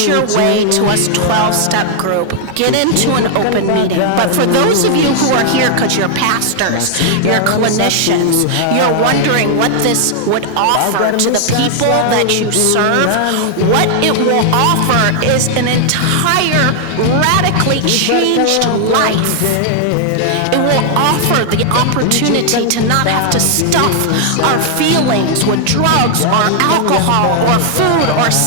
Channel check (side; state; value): both; different; correlation 0.00